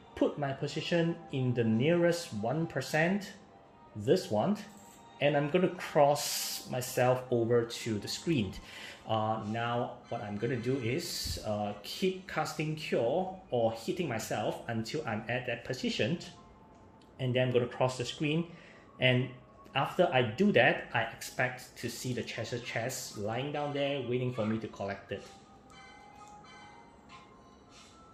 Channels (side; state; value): both; identical; correlation 1.00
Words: put my position in the nearest 1%, this one, and I'm going to cross myself over to the screen. Now what I'm going to do is keep casting Cure or hitting myself until I'm at that position, and then I'm going to cross the screen, and after I do that, I expect to see the treasure chest lying down there waiting for me to collect it.